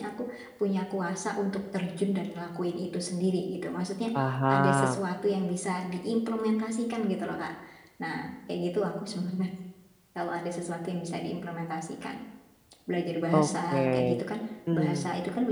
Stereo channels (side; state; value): both; identical; correlation 1.00